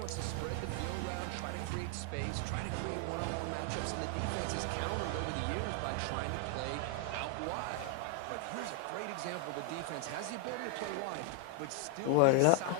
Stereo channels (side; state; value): both; different; correlation 0.00